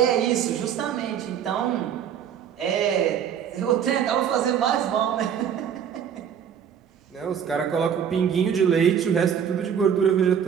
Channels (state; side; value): quieter; left; 8.4 dB